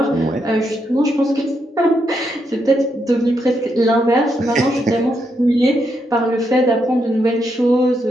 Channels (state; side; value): normal; both; correlation 0.80